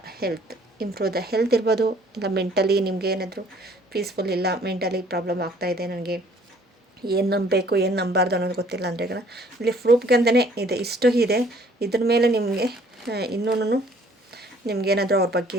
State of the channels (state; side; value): normal; both; correlation 0.58